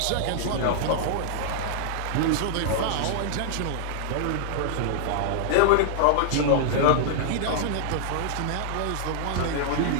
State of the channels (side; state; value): both; different; correlation -0.01